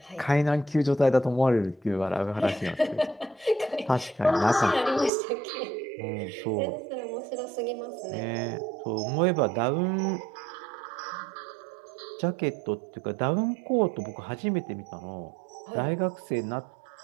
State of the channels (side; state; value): left; drops out; at 5.1 s